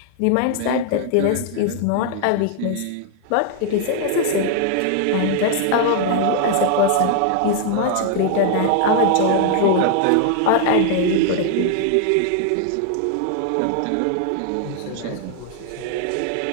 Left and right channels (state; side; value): different; both; correlation 0.00